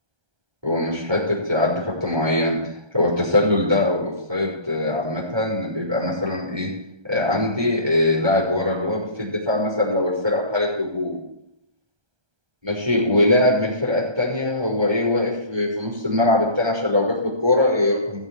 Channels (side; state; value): left; late; 1.3 ms